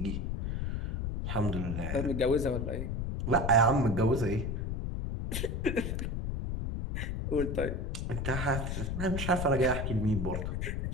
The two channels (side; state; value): left; noise; rumble, 2 dB below the sound